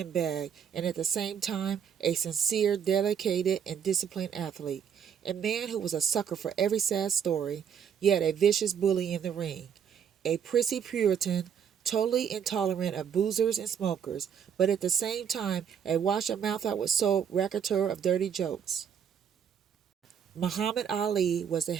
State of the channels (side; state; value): left; quieter; 8.0 dB